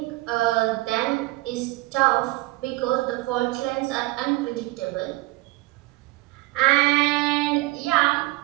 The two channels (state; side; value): quieter; left; 20.7 dB